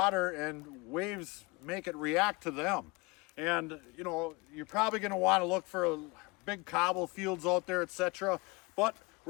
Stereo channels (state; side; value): quieter; right; 26.1 dB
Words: and waves make it react to them. And you know, you're probably going to want to look for big cobble fields out there, etc. But